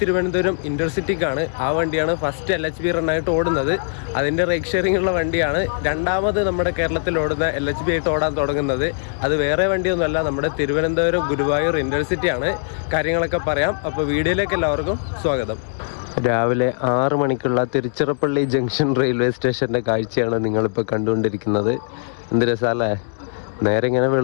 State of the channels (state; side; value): silent; right; digital silence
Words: തിരുവനന്തപുരം ഇൻ്റർസിറ്റിക്കാണ്. ആ വണ്ടിയാണ് ഫസ്റ്റ് LHB റണ്ണായിട്ട് ഓടുന്നത്. അതിൻ്റെ റേറ്റ് ഷെയറിംഗ് ഉള്ള വണ്ടിയാണ്. രണ്ടാമത് നമ്മുടെ കേരളത്തിൽ ഓടുന്ന LHB ആയിട്ട് ഓടാൻ തുടങ്ങുന്നത്. അത് വേറെ വണ്ടിയൊന്നുമല്ല, നമ്മുടെ തിരുവനന്തപുരം ഗുരുവായൂർ ഇൻ്റർസിറ്റിയാണ്. കാര്യങ്ങളൊക്കെ പറയാം. അപ്പോൾ വീഡിയോയിലേക്ക് എല്ലാവർക്കും സ്വാഗതം. രാവിലെ 6 മണിക്കുള്ള തിരുച്ചിറപ്പള്ളി ജംഗ്ഷൻ റെയിൽവേ സ്റ്റേഷൻ്റെ കാഴ്ചയാണ് നിങ്ങളിപ്പോൾ കണ്ടുകൊണ്ടിരിക്കുന്നത്. എന്ത് രസമല്ലേ! നേരെ ഇങ്ങനെ